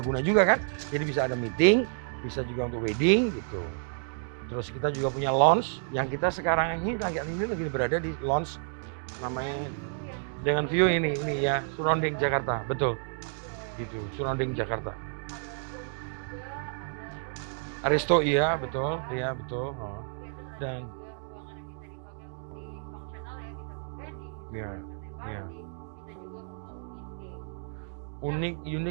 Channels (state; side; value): silent; left; digital silence